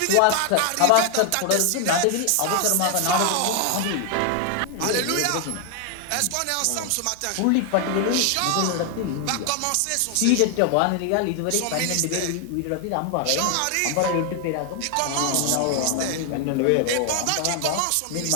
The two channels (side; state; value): both; different; correlation 0.00